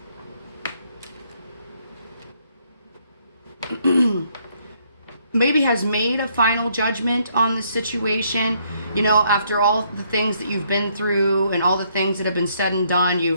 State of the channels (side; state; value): both; inverted; correlation -0.70